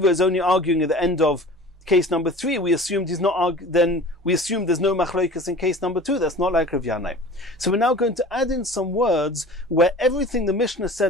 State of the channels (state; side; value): normal; both; correlation 0.41